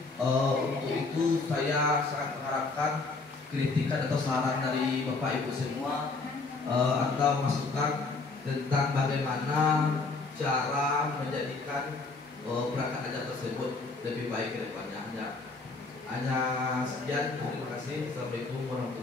Untuk itu saya sangat mengharapkan kritikan atau saran dari Bapak Ibu semua, atau masukan tentang bagaimana cara menjadikan perangkat ajar tersebut lebih baik ke depannya. Hanya sekian. Terima kasih. Assalamualaikum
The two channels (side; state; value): right; quieter; 3.8 dB